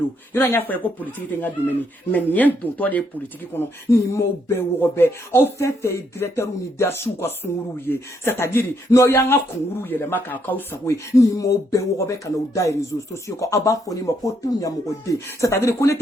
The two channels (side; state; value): both; normal; correlation 0.74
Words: ira nya fa ko politique te nga domeni mais nien don to de politique kono ni mo be wo be o fe directeur unidasu ko sunguru ye c'est-à-dire no ya nga kunguru ye le maka ka usawe ni mo be wo be kana o dai réseaux sociaux ko aba foni mo ko tunya mo de c'est-à-dire ko